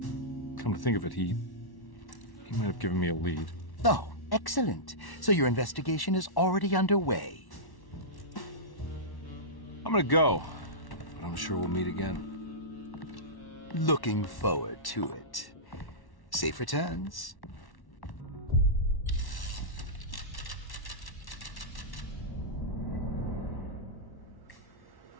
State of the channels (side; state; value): right; late; 1.1 ms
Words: Come to think of it, he might have given me a lead. Oh, excellent. So your investigation is already underway. I'm gonna go, but I'm sure we'll meet again. Looking forward to it. Safe returns.